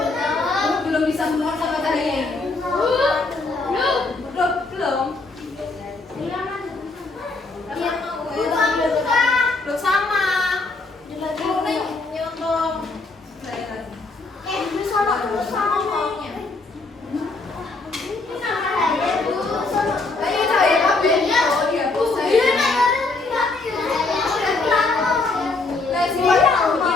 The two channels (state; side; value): quieter; right; 3.5 dB